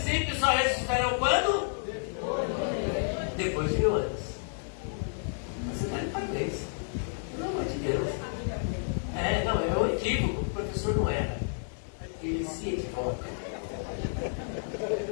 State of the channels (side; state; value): right; silent; digital silence